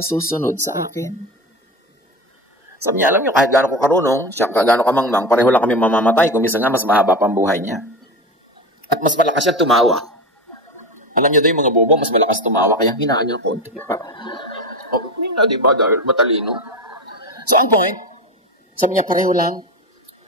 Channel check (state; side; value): normal; both; correlation 0.23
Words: susunod sa akin. Sabi niya, alam niyo, kahit gaano ko karunong, siya gaano ka mangmang, pareho lang kami mamamatay, kung minsan nga mas mahaba pa ang buhay niya. At mas malakas siya tumawa. Alam niyo daw yung mga bobo, mas malakas tumawa, kaya hinaan niyo ng konti. Hindi na, diba? Dahil matalino. So, ang point, sabi niya, pareho lang.